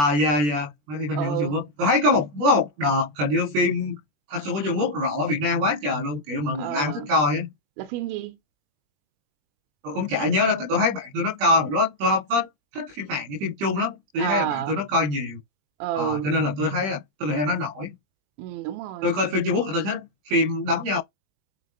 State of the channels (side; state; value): left; late; 21 ms